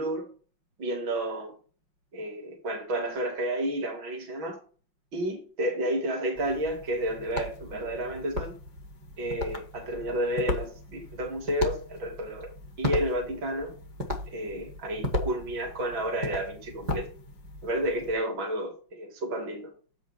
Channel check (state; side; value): late; left; 5.5 ms